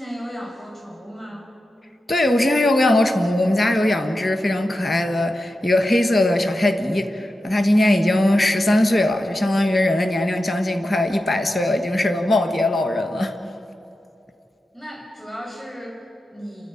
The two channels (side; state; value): both; normal; correlation 0.91